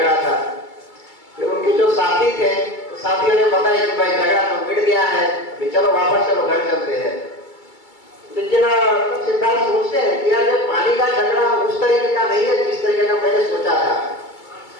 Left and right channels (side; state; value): right; late; 2.3 ms